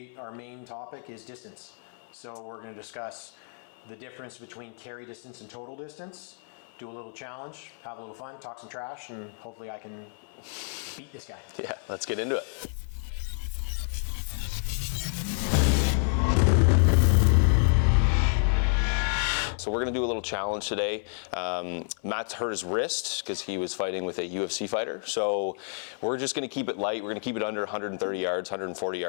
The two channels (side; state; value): right; silent; 58 dB below the other